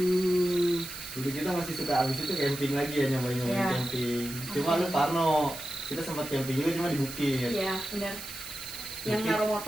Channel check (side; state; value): right; noise; hiss, 10 dB below the sound